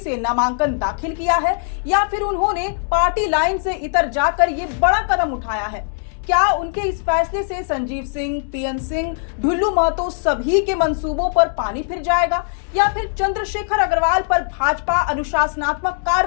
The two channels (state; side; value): silent; right; digital silence